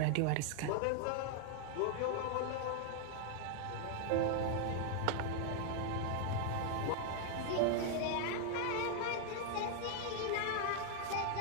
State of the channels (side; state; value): both; different; correlation 0.00